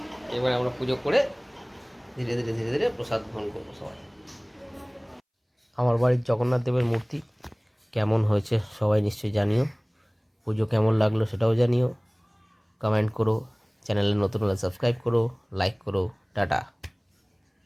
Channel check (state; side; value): identical; both; correlation 1.00